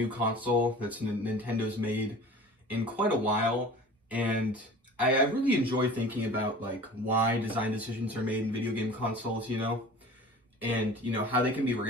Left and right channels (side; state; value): both; normal; correlation 0.41